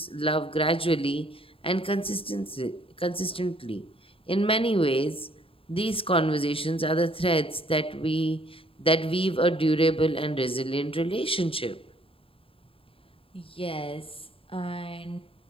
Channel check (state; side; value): late; right; 0.27 ms